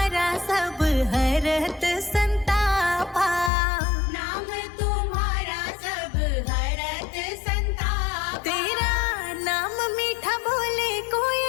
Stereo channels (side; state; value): right; drops out; at 3.5 s